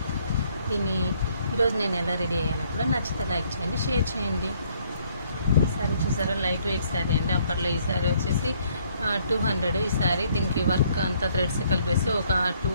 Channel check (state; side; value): inverted; both; correlation -0.66